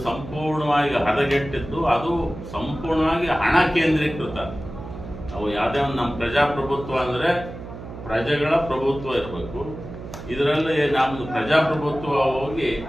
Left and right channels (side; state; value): right; noise; hum, 12 dB below the sound